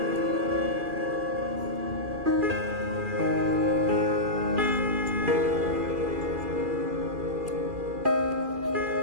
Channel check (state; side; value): late; left; 2.4 ms